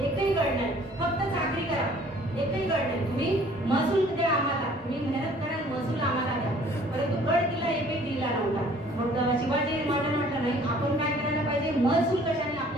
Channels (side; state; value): both; normal; correlation 0.55